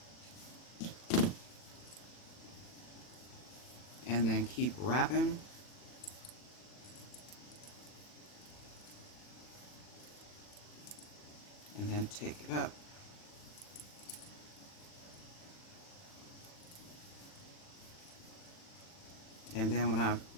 And then keep wrapping. And then take it up. And then when I'm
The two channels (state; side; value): late; right; 40 ms